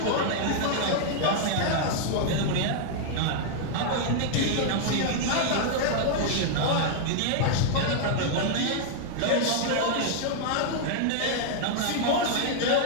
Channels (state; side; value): different; both; correlation -0.01